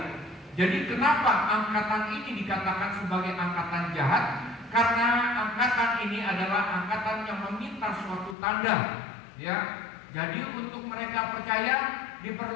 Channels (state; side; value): drops out; right; at 8.3 s